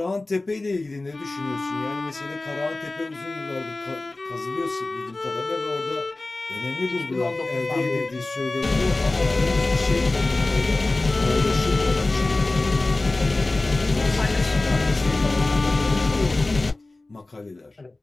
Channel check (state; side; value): quieter; right; 3.0 dB